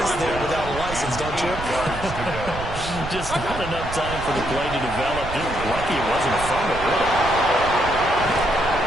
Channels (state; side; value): noise; right; rumble, 9 dB below the sound